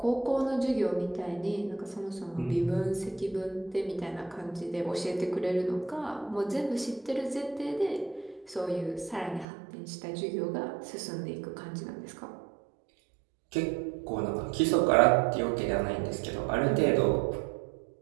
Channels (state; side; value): drops out; left; at 9.5 s